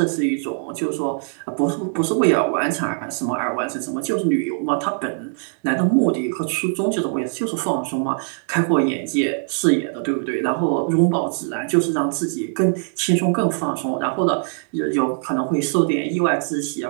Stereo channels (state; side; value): silent; left; 64 dB below the other